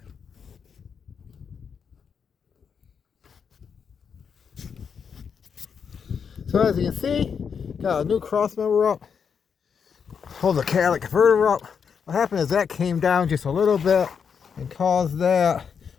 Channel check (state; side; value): quieter; right; 6.7 dB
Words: So as you can see, got a new cross member up. Hold the catalytic converter up. What happened is that came down just a little bit and caused that